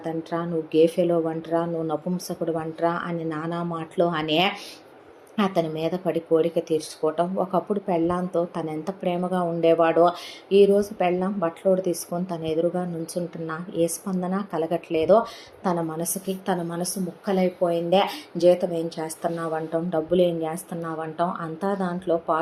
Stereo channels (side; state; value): both; identical; correlation 1.00